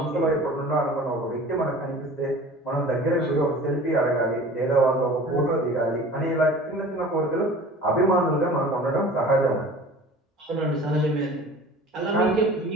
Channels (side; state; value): both; normal; correlation 0.43